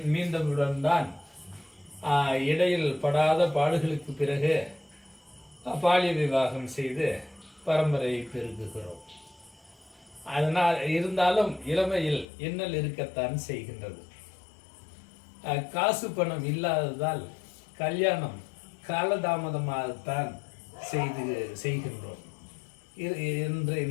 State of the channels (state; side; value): drops out; right; at 12.2 s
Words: மீந்தவுடன் தான் இடையில் படாத பாடுகளுக்கு பிறகு பாலிய விவாகம் செய்து பரம்பரையை பெருக்குகிறோம். அதனால் இருந்தாலும் இளமையில் இன்னல் இருக்கத்தான் செய்கின்றது. காசு பணம் இல்லாததால் கல்யாணம் காலதாமதமாகத்தான் செய்கின்றோம் என்று